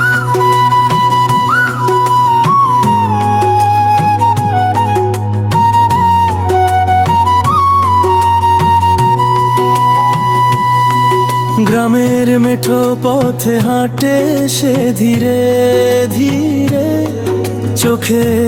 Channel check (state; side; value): identical; both; correlation 1.00